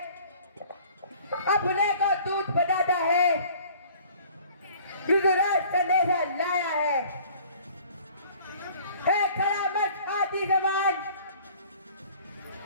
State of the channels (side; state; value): both; inverted; correlation -0.51